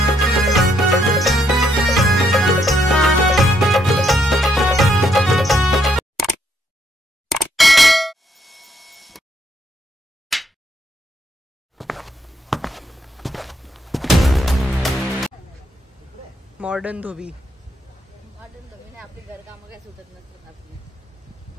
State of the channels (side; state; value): both; normal; correlation 0.74